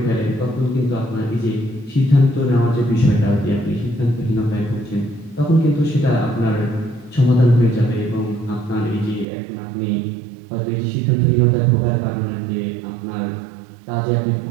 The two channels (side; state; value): left; drops out; at 9.2 s